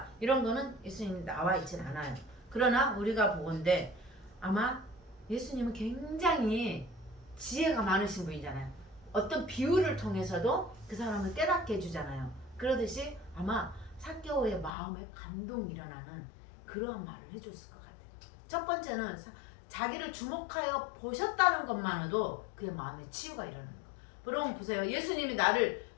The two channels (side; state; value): right; drops out; at 14.7 s